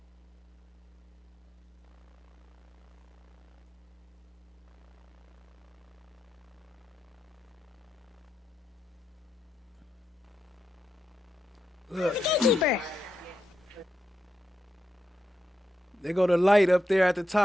Look. They go the light up there at the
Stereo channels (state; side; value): normal; both; correlation 0.86